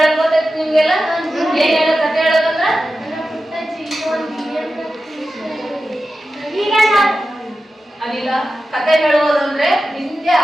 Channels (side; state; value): both; normal; correlation 0.92